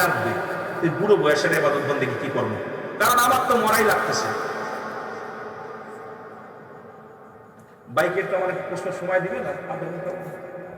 লাগবে, এই বুড়ো বয়সের ইবাদত বন্দেগী কি করবো? কারণ আমার তো মরাই লাগতেছে। বাইকের তো আমার প্রশ্ন সময় দিবে না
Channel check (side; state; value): both; identical; correlation 1.00